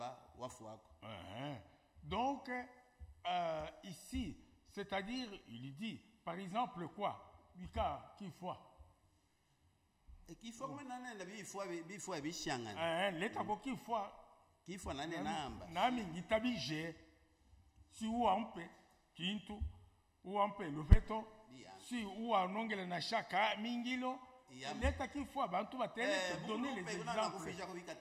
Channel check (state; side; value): identical; both; correlation 1.00